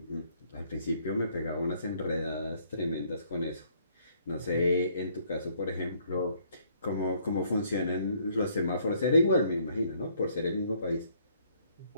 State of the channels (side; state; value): both; inverted; correlation -0.65